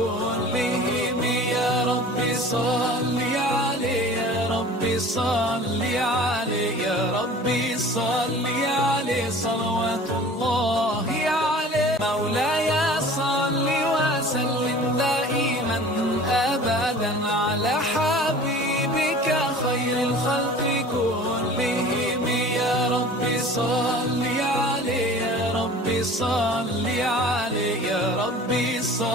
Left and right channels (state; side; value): normal; both; correlation 0.43